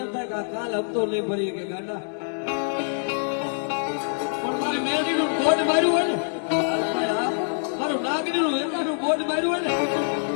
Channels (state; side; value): silent; right; digital silence